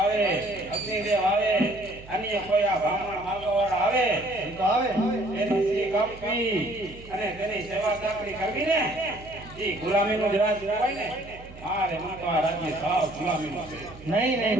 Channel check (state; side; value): noise; right; hum, 18 dB below the sound